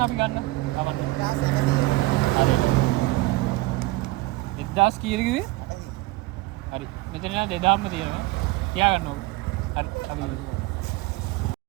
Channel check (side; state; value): left; quieter; 19.9 dB